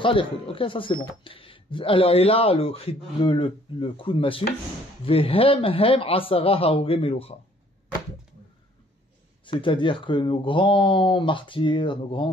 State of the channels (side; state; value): both; normal; correlation 0.60